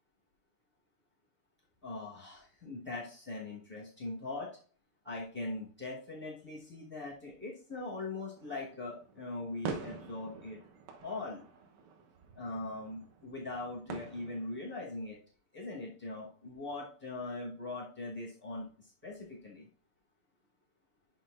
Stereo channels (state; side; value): late; left; 6.8 ms